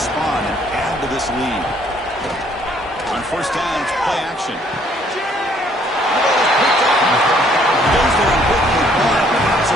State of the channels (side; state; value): both; normal; correlation 0.64